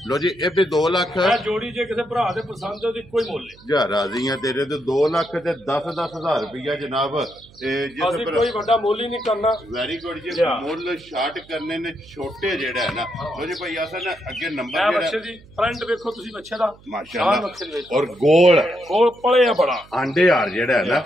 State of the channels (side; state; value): right; noise; hum, 25 dB below the sound